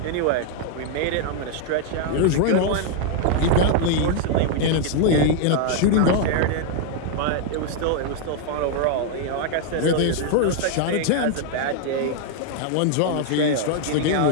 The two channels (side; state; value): both; different; correlation 0.00